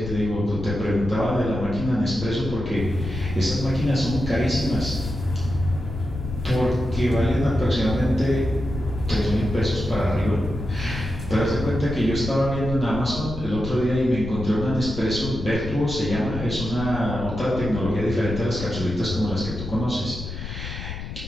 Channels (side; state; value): left; noise; rumble, 8 dB below the sound